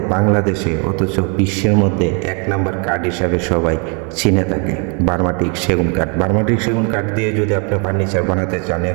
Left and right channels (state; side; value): quieter; left; 35.9 dB